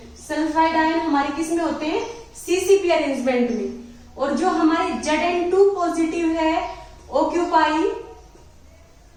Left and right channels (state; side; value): identical; both; correlation 1.00